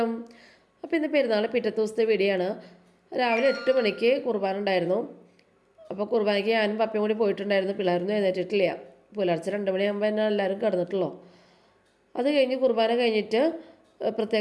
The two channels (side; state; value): both; identical; correlation 1.00